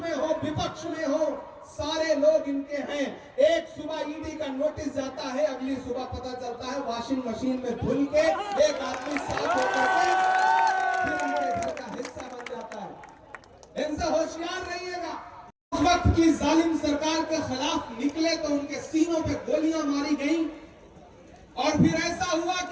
हो विपक्ष में हो, सारे लोग इनके हैं। एक सुबह ईडी का नोटिस जाता है, अगली सुबह पता चलता है वॉशिंग मशीन में धुल के एक आदमी साफ होकर के फिर हमारे घर का हिस्सा बन जाता है। इनसे होशियार रहिएगा। उस वक्त की जालिम सरकार के खिलाफ निकले तो उनके सीनों पे गोलियां मारी गई और फिर ऐसा हुआ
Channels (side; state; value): both; identical; correlation 1.00